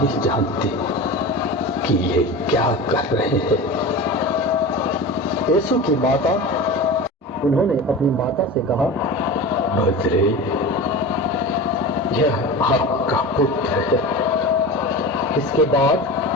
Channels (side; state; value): both; normal; correlation 0.30